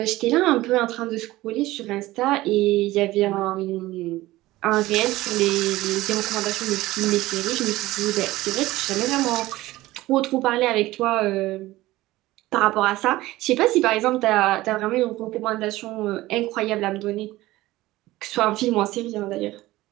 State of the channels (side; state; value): left; quieter; 17.7 dB